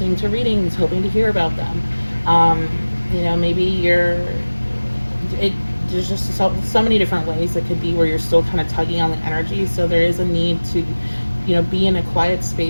to readings, hoping to hear about them. You know, maybe there's just so many different ways it could be where you're still kind of tugging on the energy. So there is a need to, you know, be in a quiet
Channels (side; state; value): both; inverted; correlation -1.00